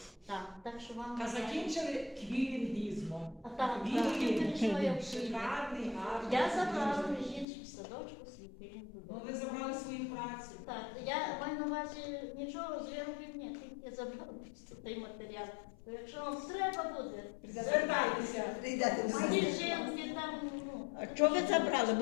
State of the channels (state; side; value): drops out; right; at 7.5 s